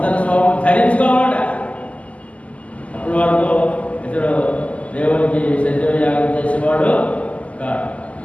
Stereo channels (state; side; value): late; right; 0.068 ms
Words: స్వభావం ధరించుకోవాలట. అప్పటి వరకు ఇతడు దేవునికి సజీవ యాగం చేసేవాడు కాదు.